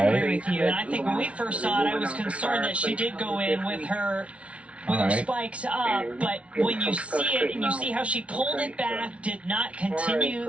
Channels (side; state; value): left; late; 0.062 ms